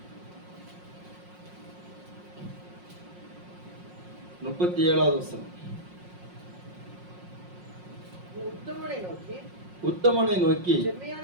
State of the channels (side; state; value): left; late; 5.5 ms